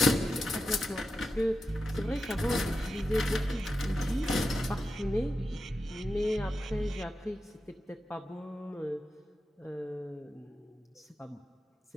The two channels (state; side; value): normal; both; correlation 0.90